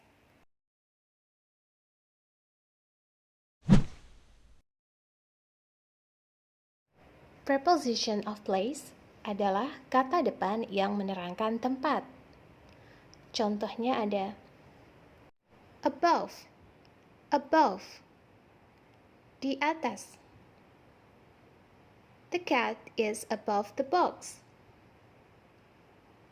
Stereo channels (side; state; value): both; identical; correlation 1.00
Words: Preposition of place adalah kata depan yang menerangkan tempat. Contohnya ada above, above, di atas. The cat is above the box.